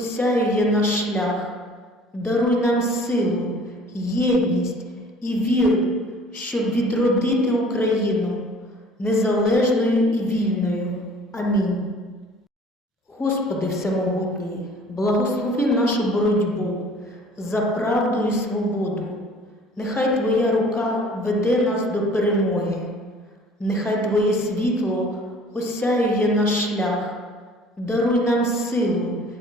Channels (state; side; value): normal; both; correlation 0.50